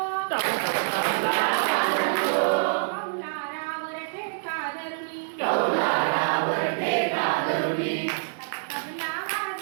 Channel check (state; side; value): silent; left; digital silence